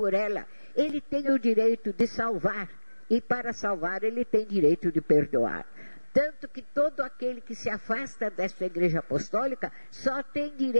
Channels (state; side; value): inverted; both; correlation -1.00